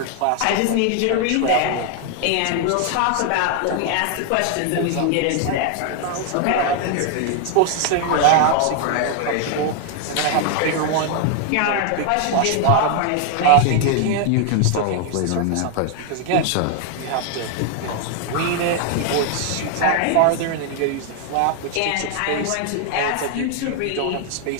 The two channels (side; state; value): both; different; correlation 0.00